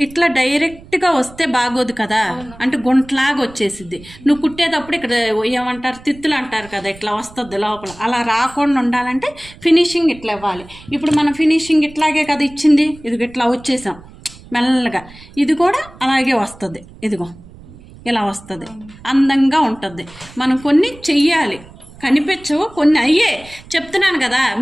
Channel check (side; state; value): right; noise; rumble, 21 dB below the sound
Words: ఇట్లా డైరెక్ట్గా వస్తే బాగోదు కదా, అంటే గుంటలాగా వచ్చేసిద్ది. నువ్వు కుట్టేటప్పుడు ఇక్కడ ఏమంటారు, తిత్తులు అంటారు కదా, ఇట్లా వస్తుంది లోపల. అలా రాకుండా ఉండాలంటే ఫినిషింగ్ ఇట్లా ఇవ్వాలి. ఇప్పుడు మనం ఫినిషింగ్ ఇట్లాగే కదా ఇచ్చింది, ఇదిగో ఇట్లా వచ్చేసాం మెల్లగా. ఇది కూడా అలాగే వస్తుంది, ఇదిగో ఇలా వస్తుంది, అందంగా ఉంటుంది. మనం కొన్ని చెయ్యాలి, కనిపించవు కొన్ని. అయ్యే చెప్తున్నాను కదా